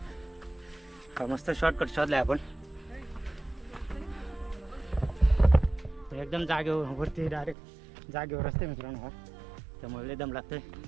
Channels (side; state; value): left; drops out; at 7.6 s